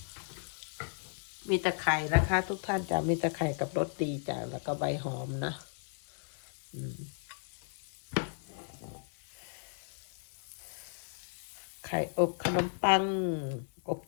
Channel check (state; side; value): silent; right; 54 dB below the other